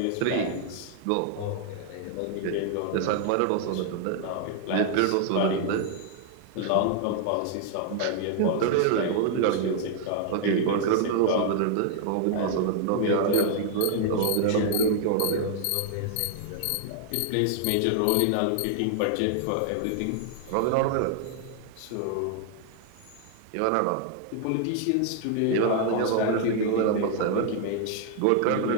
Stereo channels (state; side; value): different; both; correlation 0.00